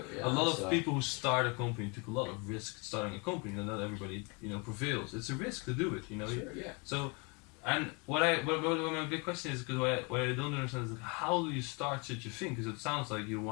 a lot of people who start a company took a lot of risk starting a company. And not everybody, prevails. It's a risk to do it, So, and what my big question is, because what I don't understand is, like, how do you start such a thing? Because it sounds like you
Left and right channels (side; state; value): right; quieter; 31.5 dB